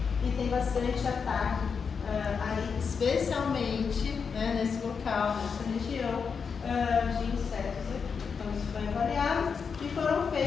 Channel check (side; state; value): right; quieter; 5.9 dB